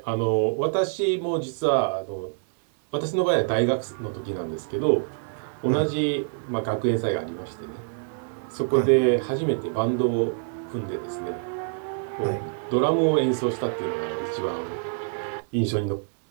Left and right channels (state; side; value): silent; left; 61 dB below the other